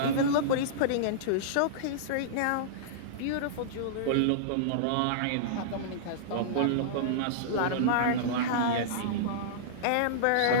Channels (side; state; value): both; different; correlation -0.03